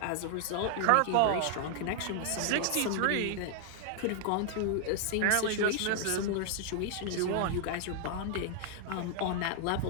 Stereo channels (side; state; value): both; different; correlation 0.00